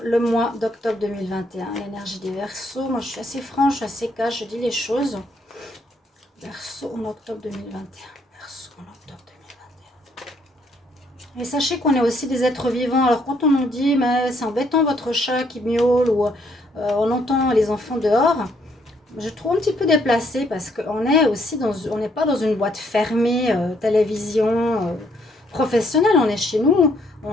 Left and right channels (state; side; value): normal; both; correlation 0.69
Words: le mois d'octobre 2021. L'énergie des Verseaux, moi je suis assez franche, je suis assez cash, je dis les choses. Verseau en octobre 2021. Verseau en octobre 2021. Et sachez qu'on est aussi des êtres vivants. Alors quand on nous dit, mais c'est embêtant votre chat qui miaule ou on entend les enfants dehors, je trouve un petit peu déplacé parce qu'on est aussi on n'est pas dans une boîte fermée, télévision professionnelle. On est chez nous,